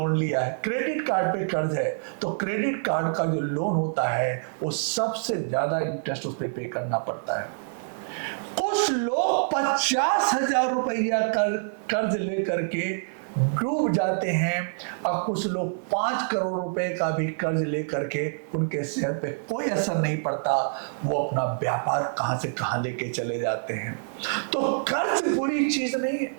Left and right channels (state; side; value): silent; left; digital silence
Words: लिया है, क्रेडिट कार्ड पे कर्ज है, तो क्रेडिट कार्ड का जो लोन होता है वो सबसे ज्यादा इंटरेस्ट उस पर पे करना पड़ता है। कुछ लोग 50,000 रुपया कर्ज लेकर के डूब जाते हैं, और कुछ लोग 5 करोड़ रुपए का भी कर्ज लेकर के उनके सेहत पे कोई असर नहीं पड़ता, वो अपना व्यापार कहां से कहां लेके चले जाते हैं। तो कर्ज बुरी चीज नहीं है,